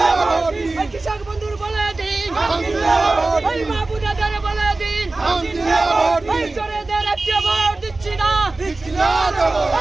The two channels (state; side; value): quieter; left; 3.2 dB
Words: ওই কৃষক বন্ধুর বলে দিন, ওই মা বোনেদের বলে দিন, ওই চোরেদের একটি ভোট দিচ্ছি না,